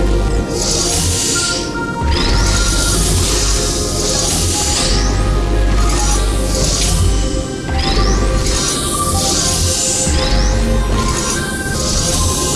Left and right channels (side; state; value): both; identical; correlation 1.00